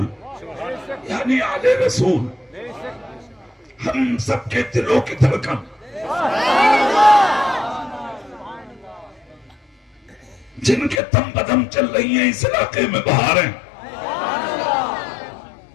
یعنی آل رسول، ہم سب کے دلوں کی دھڑکن، جن کے دم بدم چل رہی ہیں اس علاقے میں بہاریں،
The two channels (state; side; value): drops out; right; at 11.0 s